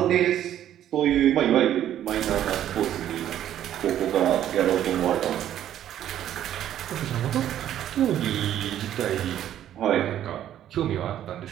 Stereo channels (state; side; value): quieter; left; 11.3 dB